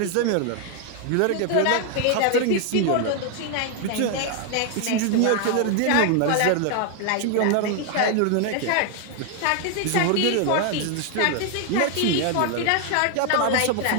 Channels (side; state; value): both; different; correlation 0.00